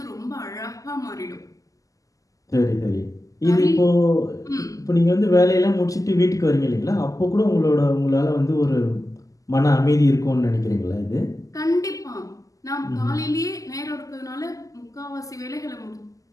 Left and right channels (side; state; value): right; late; 0.17 ms